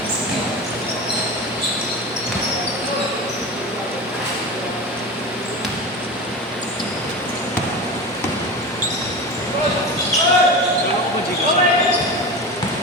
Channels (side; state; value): both; normal; correlation 0.27